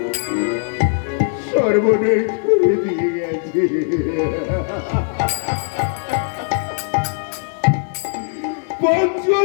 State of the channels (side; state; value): right; silent; 56 dB below the other